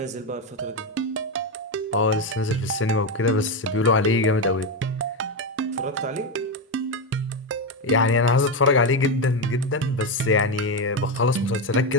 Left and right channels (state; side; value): normal; both; correlation 0.11